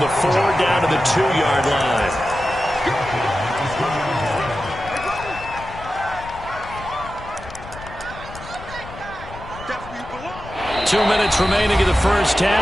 the 4 down to the 2-yard line. Two minutes remaining in the first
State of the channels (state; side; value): noise; left; rumble, 15 dB below the sound